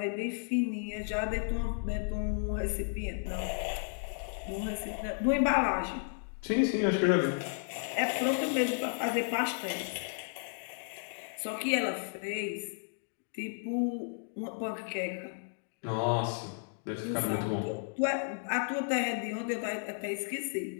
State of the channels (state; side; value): silent; right; digital silence